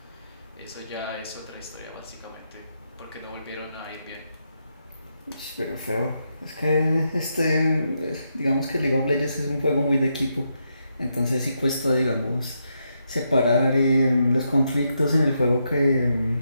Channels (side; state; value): both; inverted; correlation -0.82